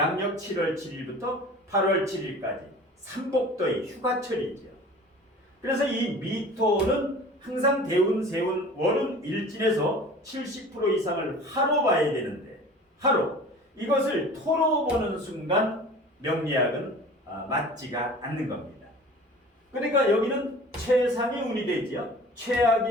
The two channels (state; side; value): normal; both; correlation 0.42